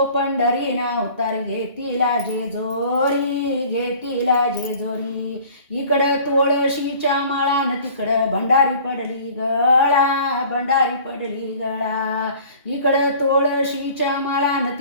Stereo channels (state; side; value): inverted; both; correlation -0.48